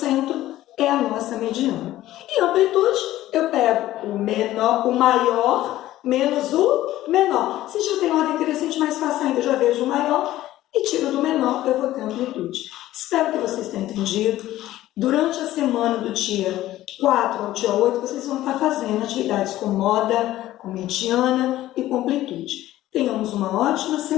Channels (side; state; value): right; quieter; 14.8 dB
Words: é a nossa mediana. E amplitude, eu pego o maior menos o menor. Se já tem ordem crescente, mais fácil ainda, eu já vejo o maior e tiro do menor, eu vou ter amplitude. Espero que vocês tenham entendido. Durante a semana do dia 4 ao dia 8, vocês vão estar fazendo atividades com moda, com mediana e com amplitude. Tenhamos uma ótima